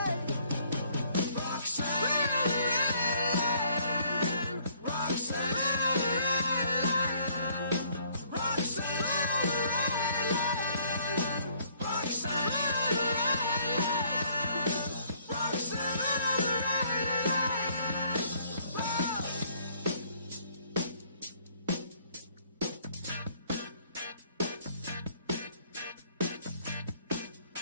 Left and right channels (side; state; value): both; inverted; correlation -0.63